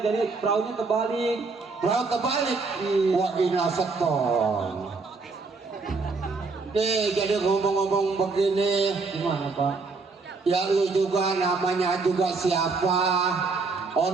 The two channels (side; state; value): left; quieter; 4.1 dB